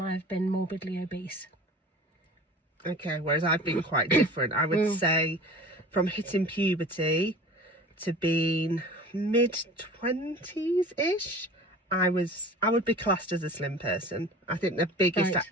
I've been morbidly obese. Okay, whereas I've been quite different. I would say from hitting puberty to being mid-20s-ish, I would be classed as a slim person. I think the biggest I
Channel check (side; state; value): both; normal; correlation 0.41